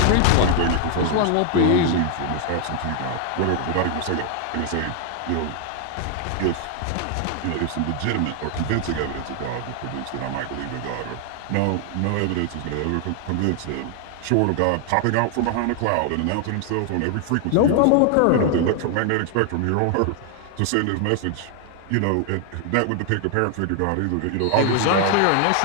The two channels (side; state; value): both; different; correlation 0.00